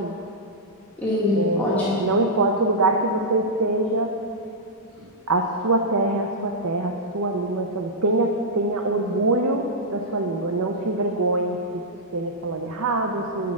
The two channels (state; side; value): normal; both; correlation -0.08